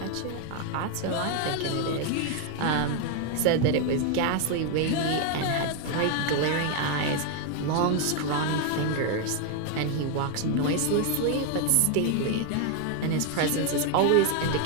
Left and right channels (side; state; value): both; different; correlation 0.01